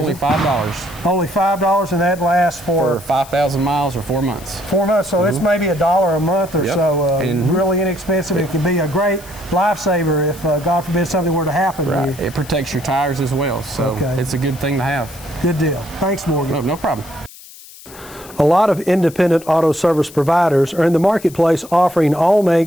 $5. Only $5, and that lasts for 5,000 miles or 4 months. 4 months, so it's maybe $1 a month or so. Really inexpensive. It can be a great lifesaver if, God forbid, something were to happen to you. It protects your tires as well, so it's a good thing to have. Good deal. Thanks, Morgan. No problem. A lot of independent auto service providers are in the marketplace offering all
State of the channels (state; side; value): noise; left; hiss, 19 dB below the sound